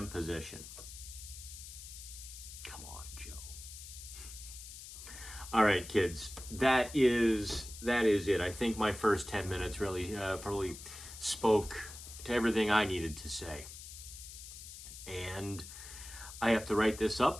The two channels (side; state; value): left; noise; hiss, 13 dB below the sound